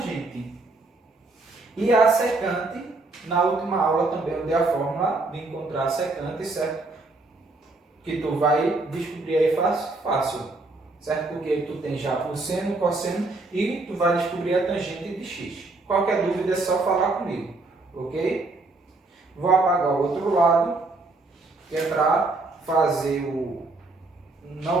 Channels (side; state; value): left; quieter; 3.2 dB